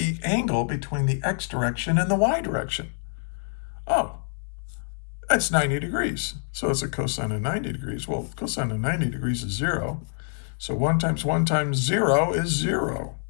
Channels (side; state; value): right; silent; digital silence